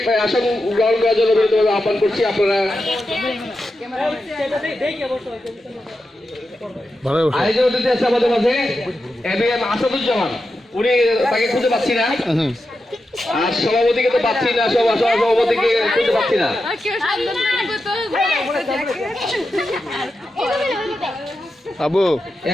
আসন গ্রহণ করার জন্য বিনীতভাবে আহ্বান করছি। আপনারা আয়োজন অতিথি আছে আমাদের মাঝে এবিএম আসাদুজ্জামান, উনি তাকে খুঁজে পাচ্ছি না, আর সভাপতিকে তো পাচ্ছি না, সভাপতিকে খুঁজে পাচ্ছি না। আবু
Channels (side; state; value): both; normal; correlation 0.89